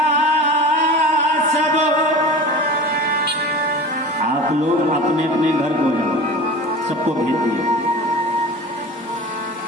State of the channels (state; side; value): normal; both; correlation 0.35